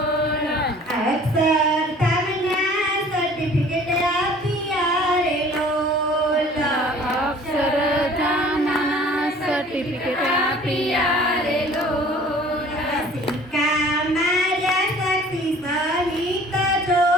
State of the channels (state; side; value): normal; both; correlation 0.50